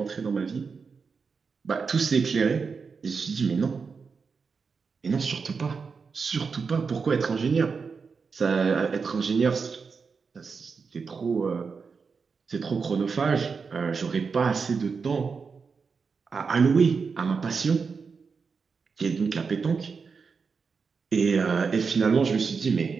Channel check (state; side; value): quieter; left; 5.3 dB